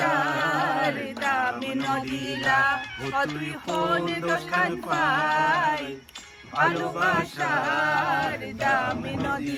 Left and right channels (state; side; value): identical; both; correlation 1.00